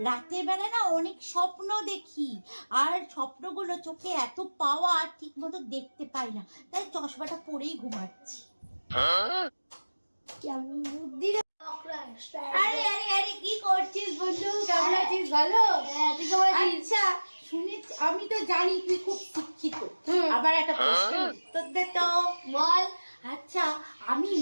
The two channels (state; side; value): inverted; both; correlation -1.00